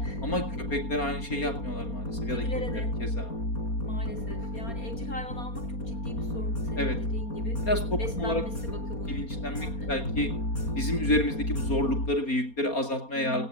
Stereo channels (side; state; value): right; late; 4.3 ms